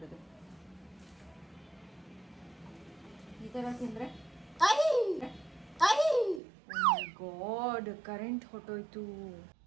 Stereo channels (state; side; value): drops out; left; at 6.4 s